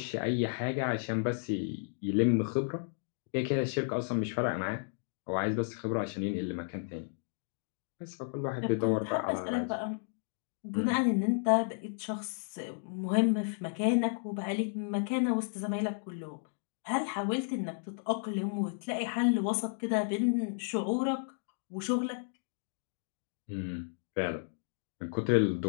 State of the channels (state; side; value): silent; right; digital silence